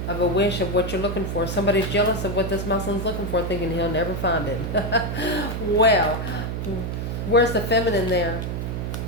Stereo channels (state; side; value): noise; right; hum, 3 dB below the sound